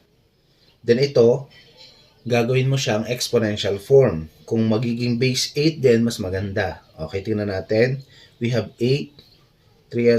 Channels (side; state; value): both; identical; correlation 1.00